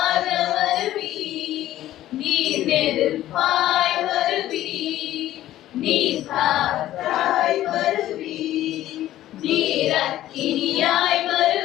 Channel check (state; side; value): quieter; right; 13.8 dB